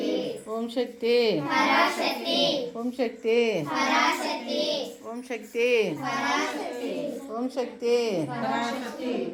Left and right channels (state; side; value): identical; both; correlation 1.00